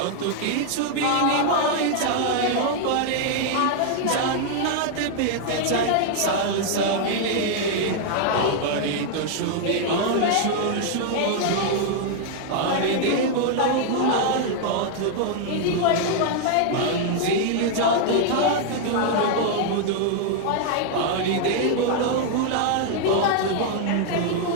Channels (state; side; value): different; both; correlation 0.00